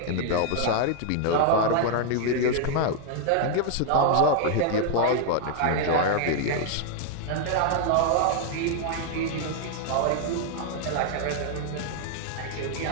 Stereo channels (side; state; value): both; different; correlation 0.00